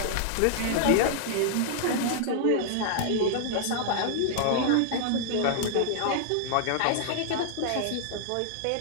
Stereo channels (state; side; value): different; both; correlation -0.01